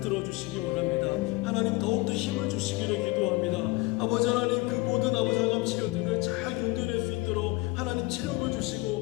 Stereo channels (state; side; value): quieter; right; 22.0 dB